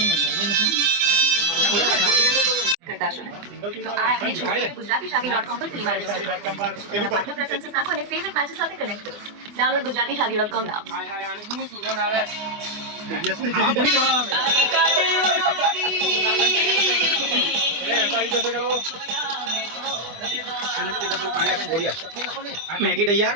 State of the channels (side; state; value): left; late; 24 ms